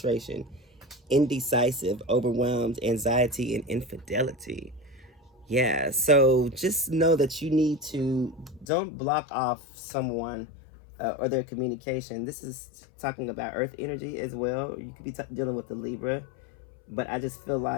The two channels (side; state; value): right; drops out; at 8.7 s